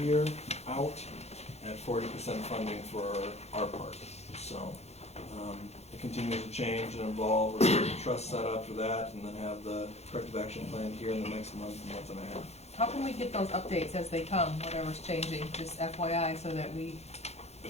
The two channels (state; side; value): late; right; 0.31 ms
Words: out at 40% funding for our part. So it continues to change and evolve. We're getting the trust set up for that and then have the corrective action plan here in the next month and a half. How can we get those updates as they come, whatever's changing, just FYI, so that we